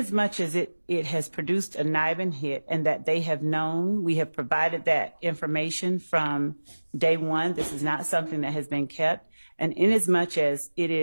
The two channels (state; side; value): inverted; both; correlation -1.00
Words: much as it has produced a NIBIN hit and that they have known, we have provided that information from day one. This is not something that has been kept. And in as much as it